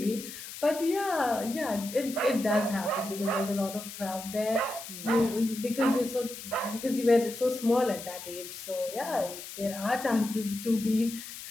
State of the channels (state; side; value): noise; left; hiss, 11 dB below the sound